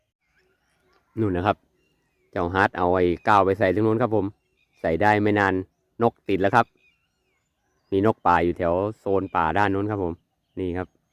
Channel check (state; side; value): identical; both; correlation 1.00